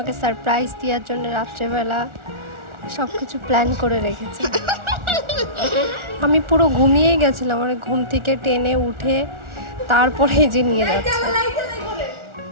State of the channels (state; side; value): late; left; 1.4 ms